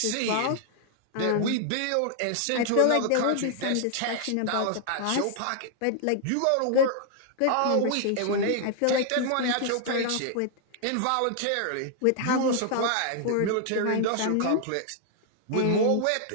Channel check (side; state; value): both; different; correlation 0.00